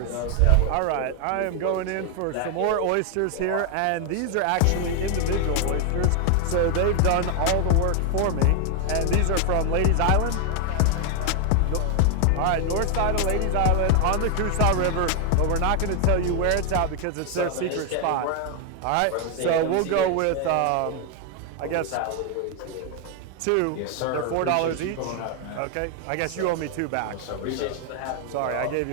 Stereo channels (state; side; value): different; both; correlation 0.00